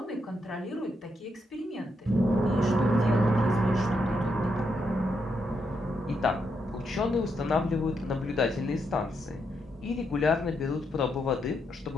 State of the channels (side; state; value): both; normal; correlation 0.80